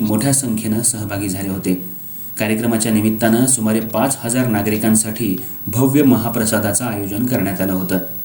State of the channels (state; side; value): identical; both; correlation 1.00